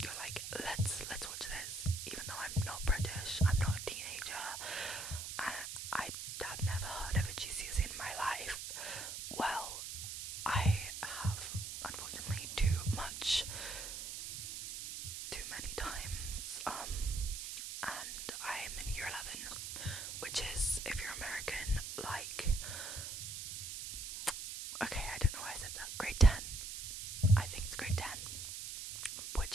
you're like, let's watch this, even though I'm not British, I'm not a teenager, and I have never heard of a GCSE in my life. Well, I have, unfortunately, too many times, and I'm in year 11, which is, if you're American, like, okay, I don't know why I said that, grade 10, I think it's grade 10,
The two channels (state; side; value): noise; right; hiss, 6 dB below the sound